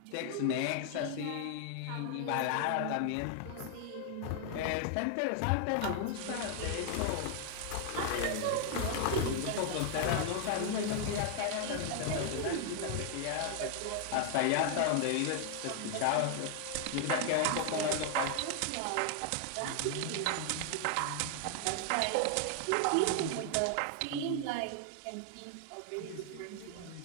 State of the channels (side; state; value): both; different; correlation 0.00